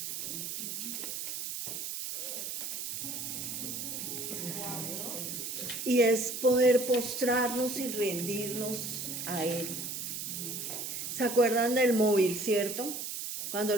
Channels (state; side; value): noise; right; hiss, 5 dB below the sound